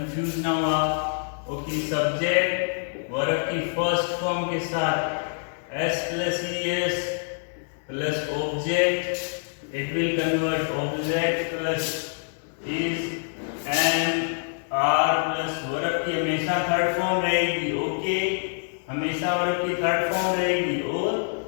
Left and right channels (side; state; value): right; silent; digital silence